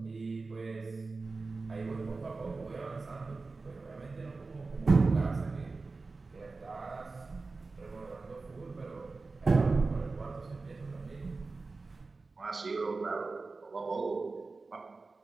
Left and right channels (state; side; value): quieter; left; 3.8 dB